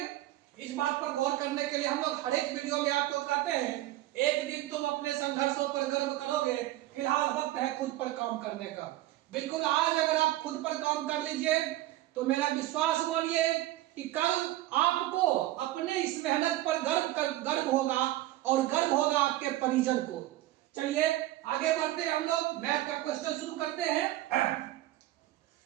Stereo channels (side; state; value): left; quieter; 15.8 dB